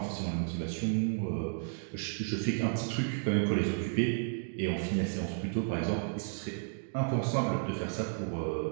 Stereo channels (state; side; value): silent; left; digital silence